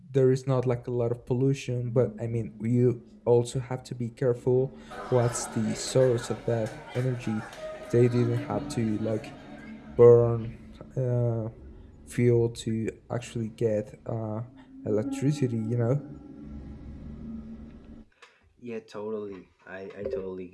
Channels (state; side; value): identical; both; correlation 1.00